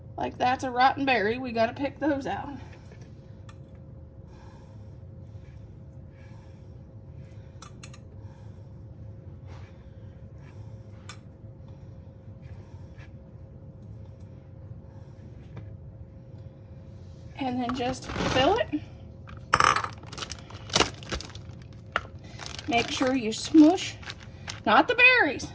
like that's a rotten berry, we got to pick those out. And then just fill it. Make sure you smush, not the berries.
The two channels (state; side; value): identical; both; correlation 1.00